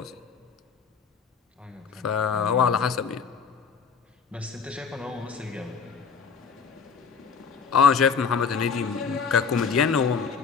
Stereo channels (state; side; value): quieter; right; 6.0 dB